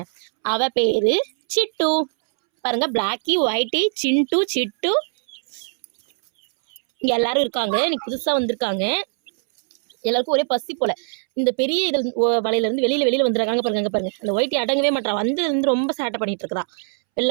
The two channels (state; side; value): silent; left; 65 dB below the other